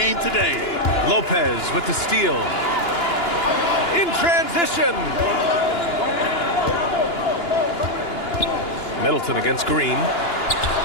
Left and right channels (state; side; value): late; right; 2.9 ms